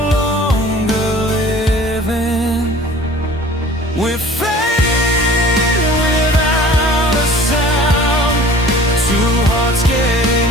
longer living. We're fading without a sound, two hearts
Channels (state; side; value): normal; both; correlation 0.46